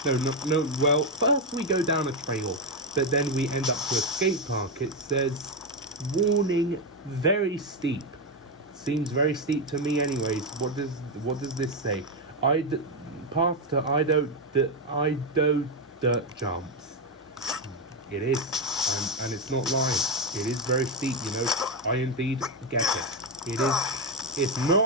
No, well, first we go down a trail, but then we end up to a skate park. It says, warning, very steep. Seems very steep to me anyways. What does this say? Path to Ido dirt jumps. It is, and it's not lying. It is very steep, I indeed get it. It's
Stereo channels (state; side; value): normal; both; correlation 0.06